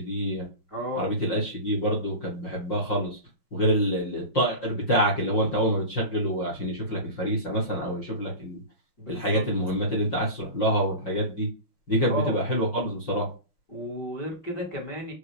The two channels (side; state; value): right; late; 5.7 ms